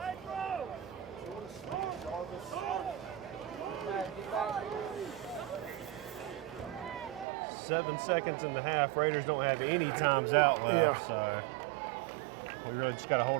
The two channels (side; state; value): left; drops out; at 7.2 s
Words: Seven seconds in the half. Raiders don't have any times out left, so we really just got to